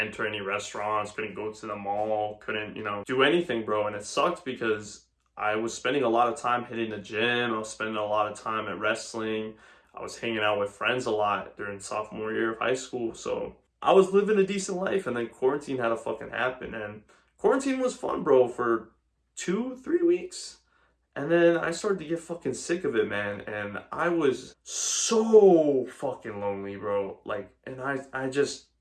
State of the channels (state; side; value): identical; both; correlation 1.00